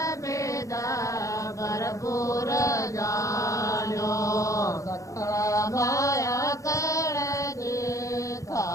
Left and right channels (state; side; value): late; right; 0.16 ms